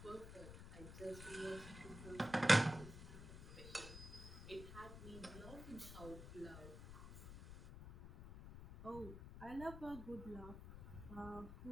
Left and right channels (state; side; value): noise; left; rumble, 11 dB below the sound